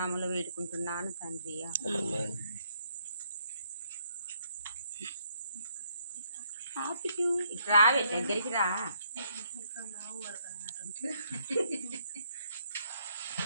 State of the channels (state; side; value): inverted; both; correlation -0.72